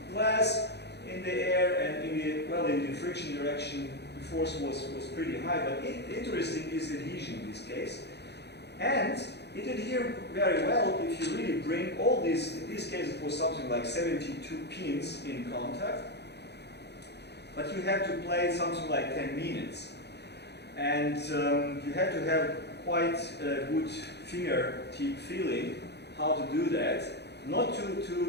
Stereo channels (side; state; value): right; late; 0.49 ms